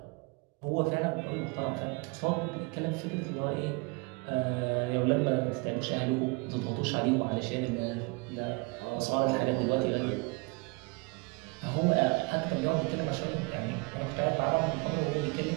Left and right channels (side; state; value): left; quieter; 29.1 dB